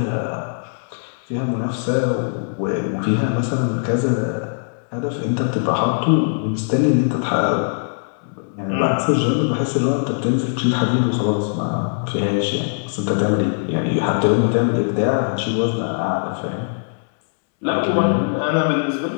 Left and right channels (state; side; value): silent; right; 65 dB below the other